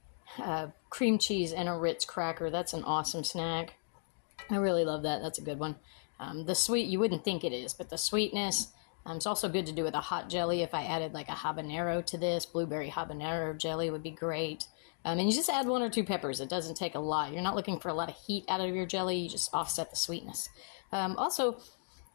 cream cheese and a Ritz cracker. That's an awesome snack. I really love that. That's a good one. The sweet, you wouldn't think it is, but the sweetness, it's also good to do with a hot jelly. If I added like a habanero to this, blueberry habanero jelly would be great. And you just add 1 or 2 peppers. It doesn't take a lot. You're not looking for a lot of heat out of your jelly. You just offset the sweetness. Also,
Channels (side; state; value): right; silent; digital silence